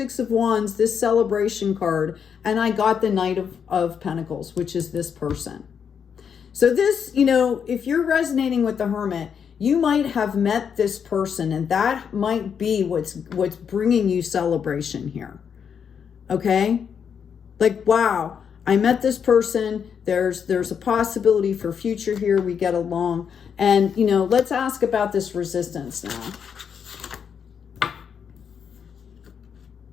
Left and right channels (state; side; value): quieter; right; 7.3 dB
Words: of Wands, this celebration card, and I got the Knight of Pentacles, which is this person. So this, you know, if you're resonating with the Hermit, you might have met this person, and that might be what's bringing you celebration here. Okay? Like, wow, I met this person. There's a possibility for future here. We get along. And, you know, let's ask about this resistance now.